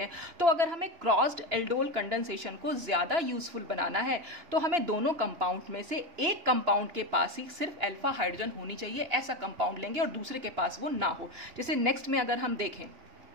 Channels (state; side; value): late; left; 2.9 ms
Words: हैं। तो अगर हमें क्रॉस्ड एल्डोल कंडेंसेशन को ज्यादा यूजफुल बनाना है तो हमें दोनों कंपाउंड में से एक कंपाउंड के पास ही सिर्फ अल्फा हाइड्रोजन होनी चाहिए, ऐसा कंपाउंड लेंगे और दूसरे के पास वो ना हो। जैसे नेक्स्ट में अगर हम देखें,